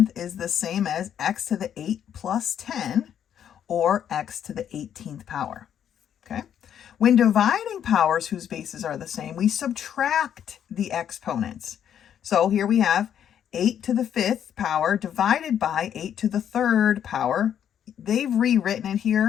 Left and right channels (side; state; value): right; quieter; 9.3 dB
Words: is the same as x to the 8 plus 10, or x to the 18th power. Okay? When dividing powers whose bases are the same, we subtract the exponents. So here we have 8 to the 5th power divided by 8 to the 3rd power. They've rewritten it